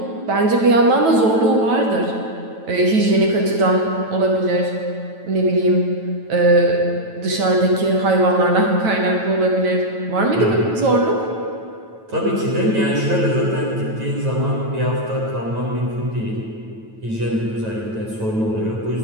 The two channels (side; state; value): left; late; 9.1 ms